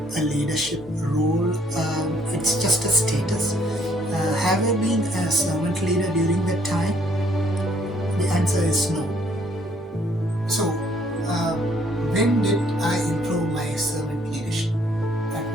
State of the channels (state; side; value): normal; both; correlation 0.65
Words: a leadership role. It's just a status. Have I been a servant leader during that time? The answer is no. So, when did I improve my servant leadership? At